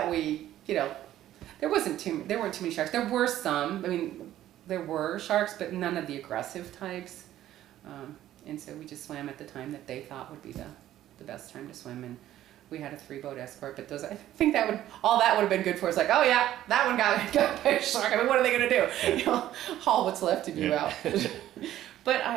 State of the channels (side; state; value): left; quieter; 12.9 dB